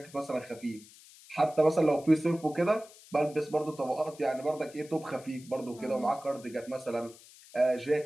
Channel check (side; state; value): left; noise; hiss, 22 dB below the sound